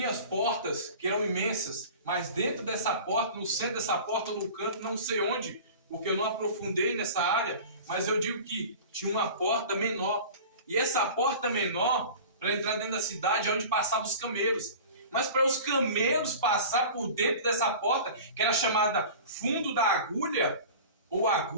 as portas que eram imensas, mas dentro dessa porta, no centro dessa porta, no canto, não sei onde, porque eu não aprofundei nessa área, mas eu digo que tinha uma porta menor. E essa porta menor, para entrar dentro da cidade, é onde passavam os camelos. Mas para os camelos passar por dentro dessa porta, que era chamada fundo da agulha, ou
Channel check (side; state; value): both; inverted; correlation -0.38